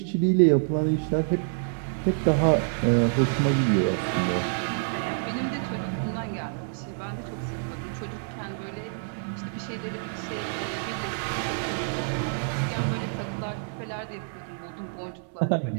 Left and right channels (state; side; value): silent; left; digital silence